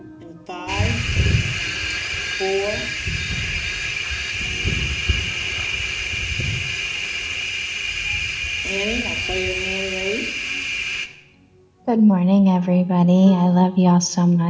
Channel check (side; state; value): both; identical; correlation 1.00